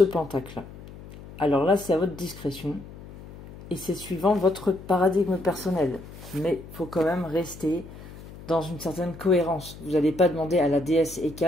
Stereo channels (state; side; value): noise; left; hum, 16 dB below the sound